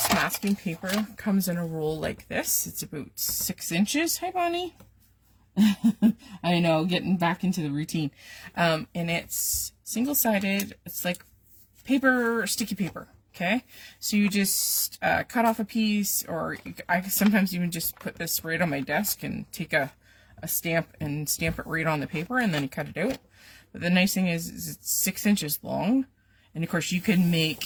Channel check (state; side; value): identical; both; correlation 1.00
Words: masking paper comes in a roll like this. It's about 6 inches. Hi, Bonnie. I know, getting back into the routine. And it's single-sided. It's like paper, sticky paper. Okay, so you just cut off a piece, or I sometimes even just put this right on my desk and take a stamp and stamp it right on the paper, and then you cut it out. But the nice thing is it's 6 inches long, and of course you can